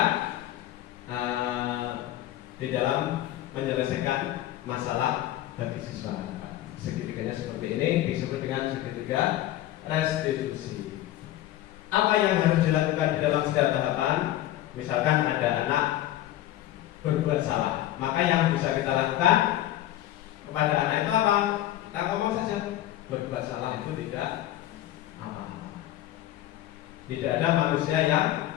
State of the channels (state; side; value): quieter; right; 13.9 dB